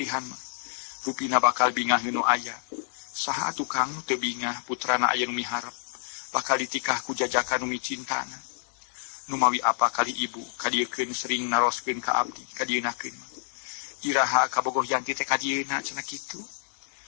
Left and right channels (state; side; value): silent; right; digital silence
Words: mah. Rupina bakal bingah nu aya. Saha atuh Kang teu bingah putrana aya nu miharep bakal ditikah ku jajakan nu micintana. Nu mawi apa kali ibu kadiekeun sering naroskeun ka abdi kadienakeun mah. Iraha kabogoh Yanti teh kadieuna cenah kitu.